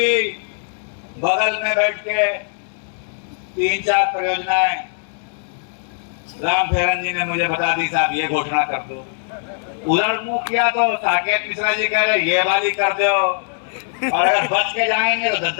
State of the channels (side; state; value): right; silent; digital silence